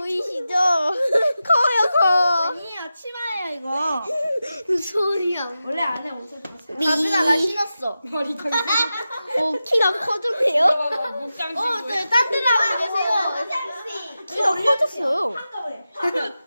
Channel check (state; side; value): inverted; both; correlation -0.92